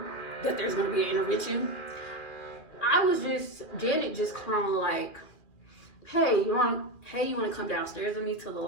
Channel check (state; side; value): late; right; 2.4 ms